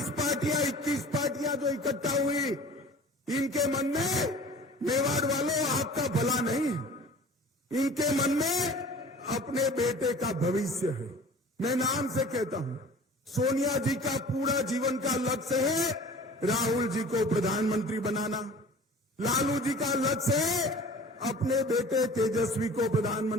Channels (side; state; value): both; normal; correlation 0.43